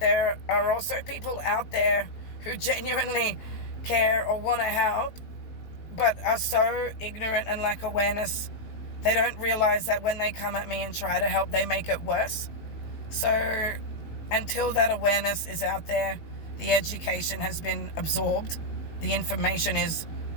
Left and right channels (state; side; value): late; right; 19 ms